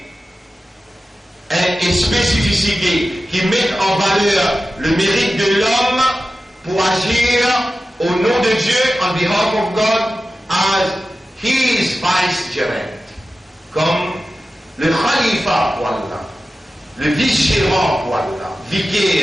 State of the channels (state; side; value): normal; both; correlation 0.94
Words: une spécificité qui met en valeur le mérite de l'homme pour agir au nom de Dieu, on behalf of God, as his vicegerent, comme le khalifa pour Allah, le vice-gérant pour Allah,